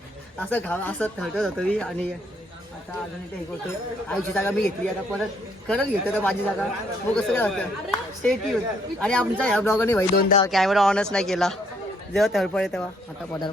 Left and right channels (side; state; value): both; normal; correlation 0.69